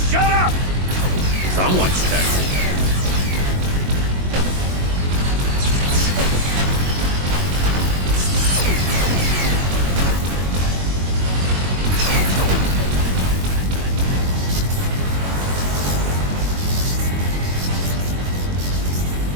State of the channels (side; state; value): left; late; 22 ms